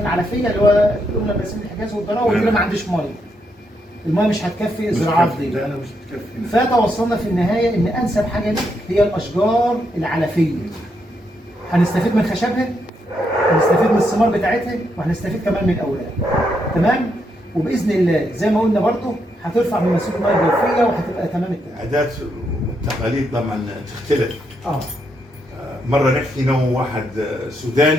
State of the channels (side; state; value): both; normal; correlation 0.79